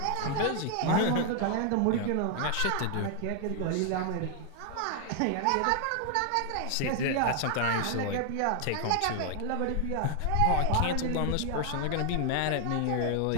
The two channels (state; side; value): different; both; correlation 0.00